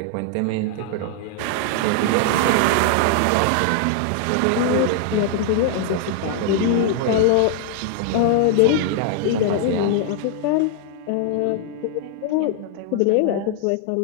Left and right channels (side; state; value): both; different; correlation 0.00